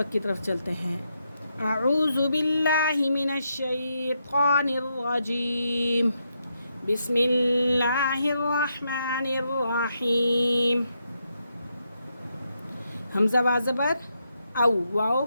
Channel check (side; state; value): both; inverted; correlation -0.81